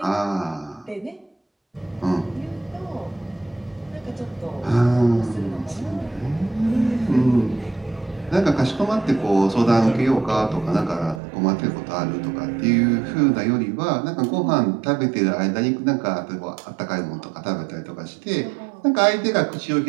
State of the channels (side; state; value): left; drops out; at 11.2 s